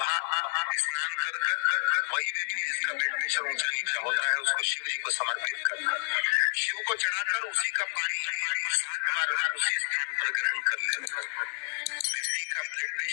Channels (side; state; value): right; silent; digital silence